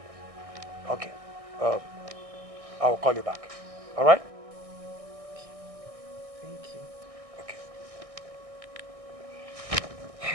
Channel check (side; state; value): left; late; 1.6 ms